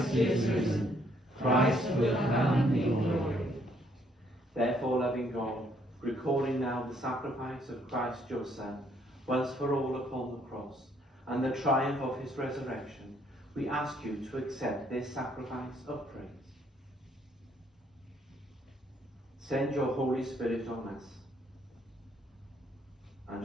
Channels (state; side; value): normal; both; correlation 0.68